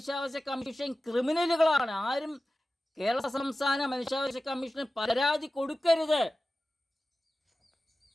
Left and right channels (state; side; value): normal; both; correlation 0.95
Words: കമ്മീഷൻ ക്രിമിനലുകളാണ്. ആരും കേരള സംസ്ഥാന മനുഷ്യാവകാശ കമ്മീഷന് പരാതി കൊടുക്കരുത്.